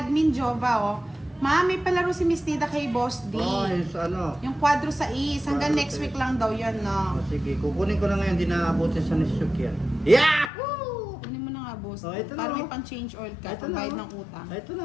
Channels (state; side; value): drops out; right; at 10.5 s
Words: Jova, oh. Ma, may palaro si Miss Nida kay Boss D. Oh, yung sa ano. Yung quadro sa is. Hanggang Quadro next sa week lang daw yan, no? Oh, sige, kukunin ko na ngayon. Di naabutin sa Nisuk yan. Yahoo! Kunin mo na nga, Boss. Oh, ito na, Para oh. may pang-change oil ka. Ito na, Pambayad oh. ng utang. Ito na,